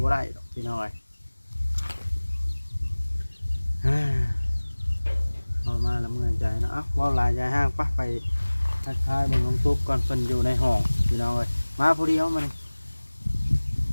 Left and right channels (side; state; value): both; inverted; correlation -1.00